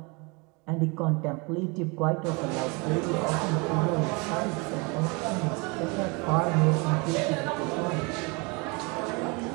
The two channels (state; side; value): quieter; left; 29.2 dB